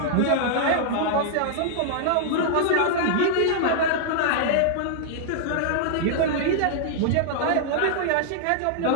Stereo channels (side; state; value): both; different; correlation -0.01